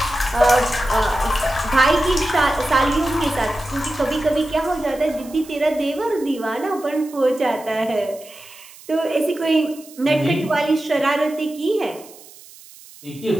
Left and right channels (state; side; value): noise; right; hiss, 21 dB below the sound